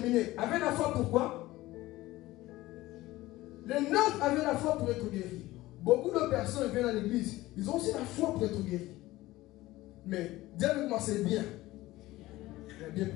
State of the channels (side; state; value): right; quieter; 17.7 dB